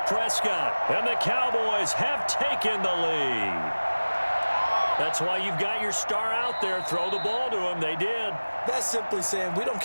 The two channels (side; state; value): both; inverted; correlation -1.00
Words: Prescott. And the Cowboys have taken the lead. That's why you've got your star out there. Throw the ball to him. They did. That's simply saying we don't